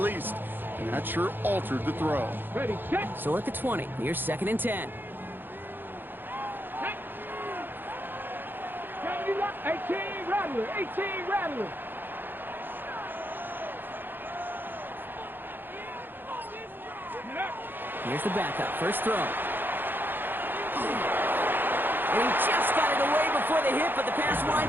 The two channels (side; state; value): left; late; 0.095 ms